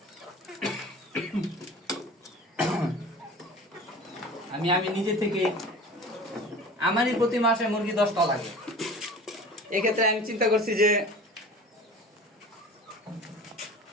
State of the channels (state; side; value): normal; both; correlation 0.40